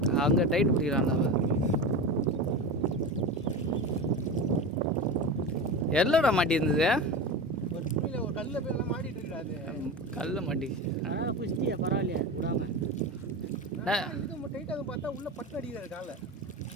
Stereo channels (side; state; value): both; normal; correlation 0.25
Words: அங்கே டைட் பிடிக்கிறான் அவன். எல்லோடா மாட்டி இருந்தது. ஒரு துணியில் ஒரு கல்லில் போய் எல்லாம் மாட்டிட்டு இருக்காது. கல்ல மாட்டிச்சு. புஷ்டியா பரவாயில்லையா விடாம. இது டைட்டாக பார்த்தா உள்ள பட்டு அடிக்கிறாரு காலை.